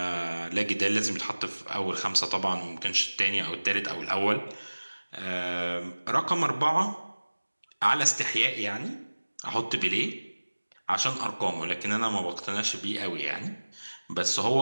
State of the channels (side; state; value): both; inverted; correlation -1.00